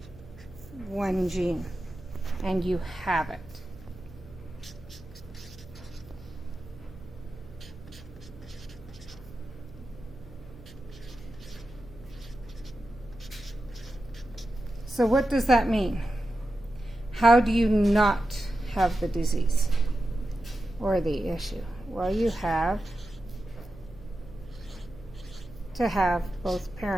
one gene, and you have it. So what does that mean? How do you not have the disease or the issue? Well, you have to have both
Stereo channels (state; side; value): noise; right; hum, 19 dB below the sound